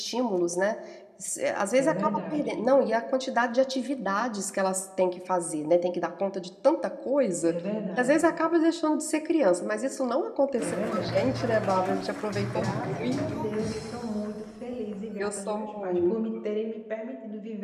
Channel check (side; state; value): both; identical; correlation 1.00